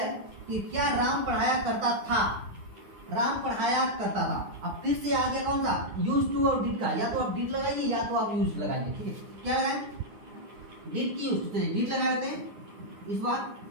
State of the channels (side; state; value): left; late; 9.7 ms